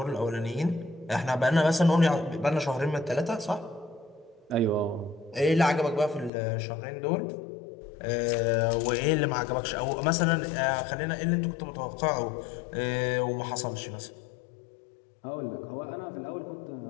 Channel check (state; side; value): drops out; right; at 6.3 s